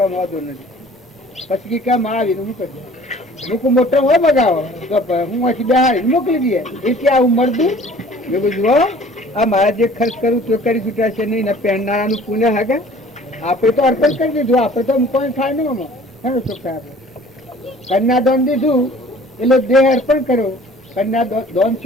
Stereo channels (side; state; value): both; normal; correlation 0.50